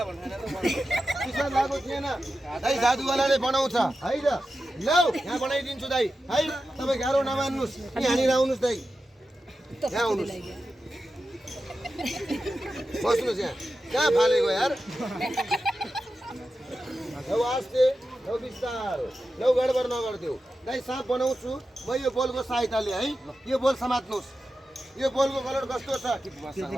भनेर चिसो लागेको थिएन है जादुवालाले बनाउँछ है त लौ यहाँ बनाइदिन्छु दाइ है तपाईँ गाह्रो नमान्नुहोस् यहाँनिर आउनुहोस् दाइ यहाँ आउनुहोस् बस्नुहोस् यहाँ कहाँ फालेको यार लौ आस्ते लौ बिस्तारो लौ गडबड नगरिदेऊ दाइ साँप बनाउँछु म यो बोलको सहायताले है यो बोल समात्नुहोस् यो बोलको कलर कस्तो छ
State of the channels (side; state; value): both; normal; correlation 0.92